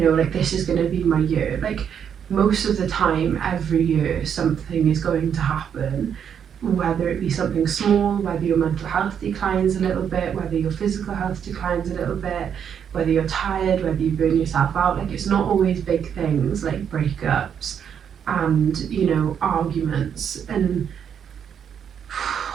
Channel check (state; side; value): quieter; left; 8.1 dB